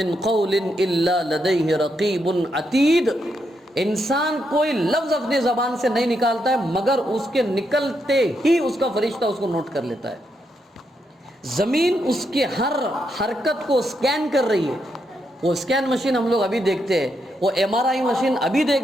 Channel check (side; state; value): both; normal; correlation 0.81